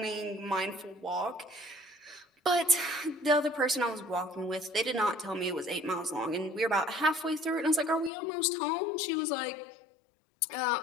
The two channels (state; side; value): drops out; right; at 8.1 s